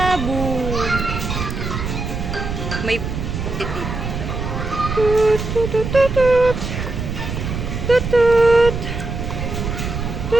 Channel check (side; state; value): right; noise; rumble, 4 dB below the sound